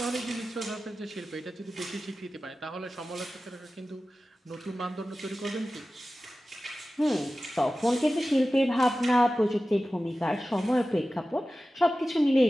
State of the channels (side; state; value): both; normal; correlation 0.95